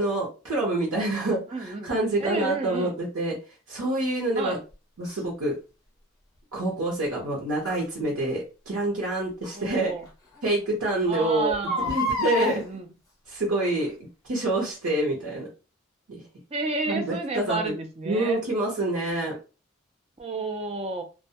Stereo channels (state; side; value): normal; both; correlation 0.33